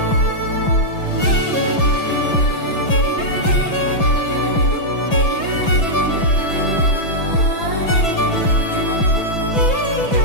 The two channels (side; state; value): right; late; 6.0 ms